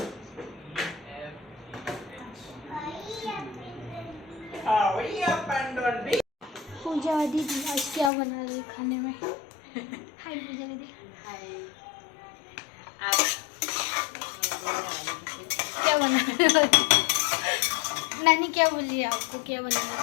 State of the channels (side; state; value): right; drops out; at 8.1 s